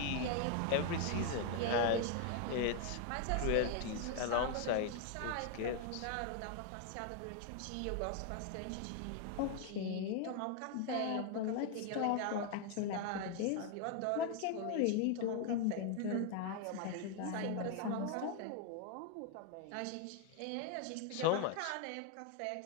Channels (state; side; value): different; both; correlation 0.01